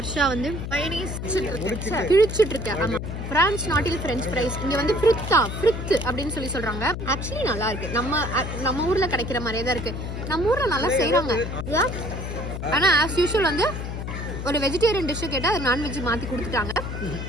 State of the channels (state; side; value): noise; left; hum, 6 dB below the sound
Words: வந்து கிழிச்சிட்டு இருக்கேன். ஆமாம், பிரான்ஸ் நாட்டில் ஃப்ரெஞ்ச் ஃப்ரைஸ். இங்கே வந்து ஃப்ரித் அப்படின்னு சொல்கிறாங்க. ஆக்சுவலி நல்லா இருக்கு. நம்ம ஊரில் கிடைக்கிற மாதிரியே தான் இருக்கு. நம்ம ஊரில் நல்லா செய்கிறாங்க. ஆனால் ஆஸ் யூஷுவல் வந்து ஒரு வெஜிடேரியன் டிஷ்ஷு கேட்டால் அது நான்வெஜ் மாற்றி கொடுத்துட்டாங்க.